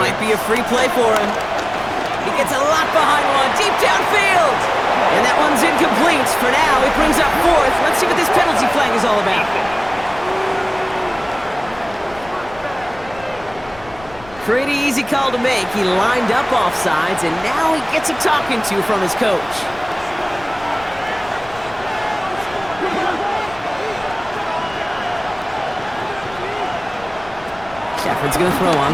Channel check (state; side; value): noise; left; rumble, 21 dB below the sound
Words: might be a free play for him. He gets a lot behind one, deep downfield. And that one's incomplete. For now, it brings up 4th. Let's see what this penalty flag is all about. Pretty easy call to make. He lined up offsides, and now he gets a talking to from his coach. Shepard's going to throw on